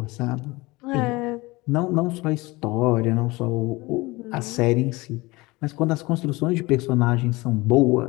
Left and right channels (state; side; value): quieter; right; 22.3 dB